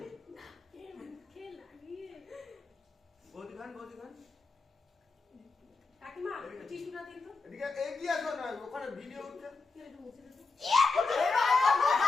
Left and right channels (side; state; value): right; quieter; 4.0 dB